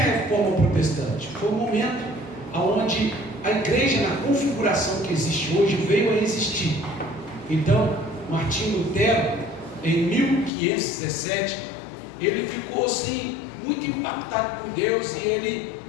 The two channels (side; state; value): right; drops out; at 10.5 s